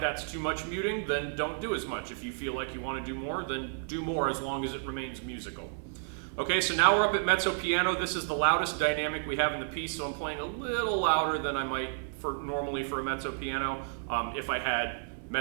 that's too much muting, then don't do as much. If you feel like you want to do more, then do more as long as it remains musical. Okay, so now we're up at mezzo piano. This is the loudest dynamic we have in the piece, so I'm playing a little louder than I might normally for a mezzo piano if I had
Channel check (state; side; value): silent; left; 57 dB below the other